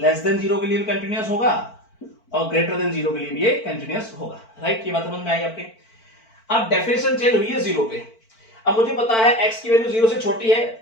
than 0 के लिए भी कंटिन्यूअस होगा और ग्रेटर देन 0 के लिए भी ये कंटिन्यूअस होगा। राइट, ये बात समझ में आई आपके। अब डेफिनेशन चेंज हुई है 0 पे। अब मुझे पता है x की वैल्यू 0 से छोटी है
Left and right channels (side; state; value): right; late; 4.5 ms